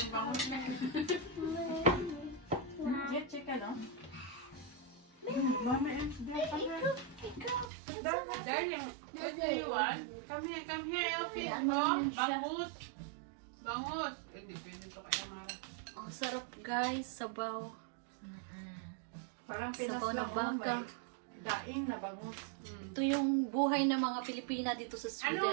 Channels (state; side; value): drops out; left; at 7.7 s